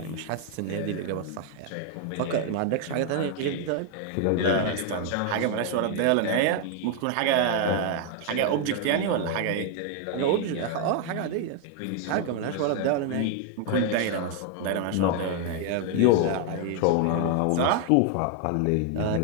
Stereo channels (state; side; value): different; both; correlation 0.00